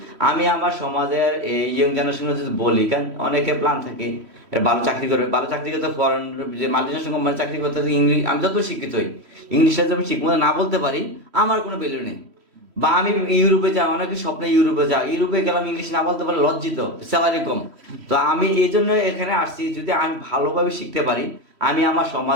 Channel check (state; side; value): late; left; 3.1 ms